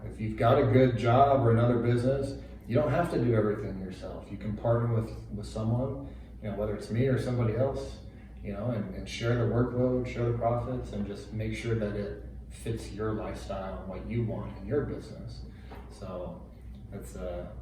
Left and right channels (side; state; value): both; identical; correlation 1.00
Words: If you've got a good job or another business, you don't have to do everything yourself. You can partner with someone, whether it's me or somebody else. And share the workload, share the profits, and just make sure that it fits your lifestyle and what you want in your business. So that's